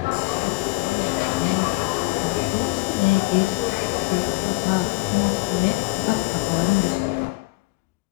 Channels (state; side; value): quieter; right; 22.0 dB